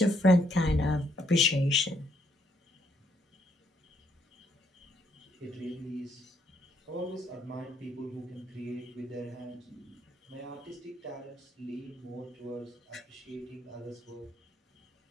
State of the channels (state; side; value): normal; both; correlation 0.72